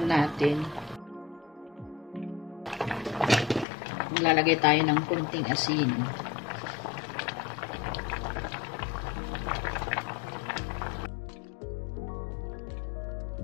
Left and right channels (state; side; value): drops out; right; at 3.7 s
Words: natin. Maglalagay tayo ng kunting asin.